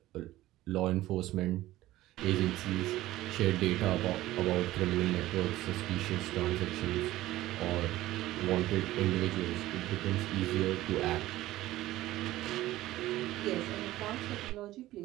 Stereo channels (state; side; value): quieter; left; 16.0 dB